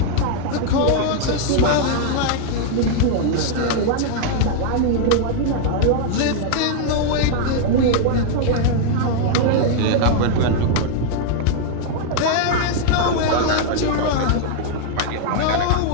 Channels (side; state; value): both; different; correlation 0.00